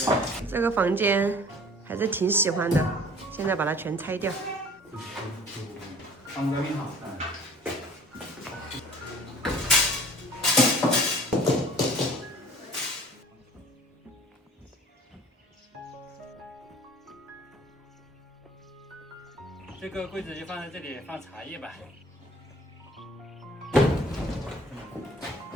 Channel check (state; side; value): normal; both; correlation 0.49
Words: 这个房间还是挺喜欢的，现在把它全拆掉。这个柜子就放在这里，放茶叶吧。